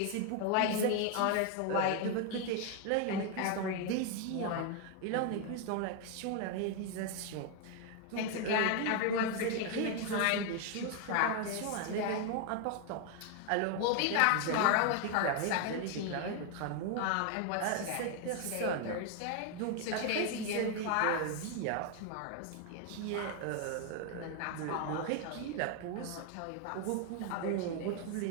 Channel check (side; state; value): both; different; correlation 0.01